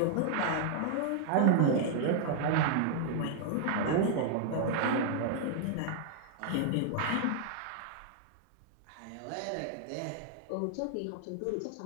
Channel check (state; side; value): different; both; correlation -0.01